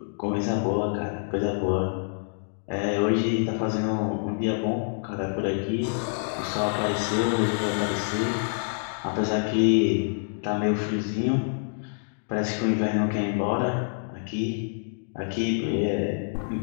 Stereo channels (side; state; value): right; silent; digital silence